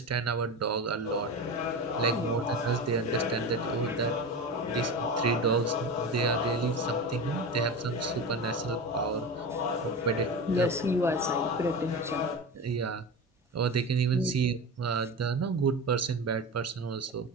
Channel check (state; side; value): normal; both; correlation 0.26